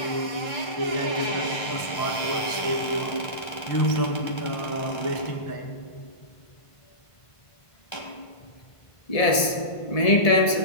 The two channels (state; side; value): late; right; 1.7 ms